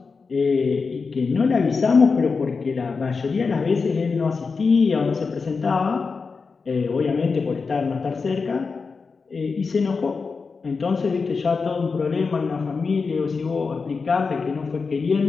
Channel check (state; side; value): quieter; right; 4.8 dB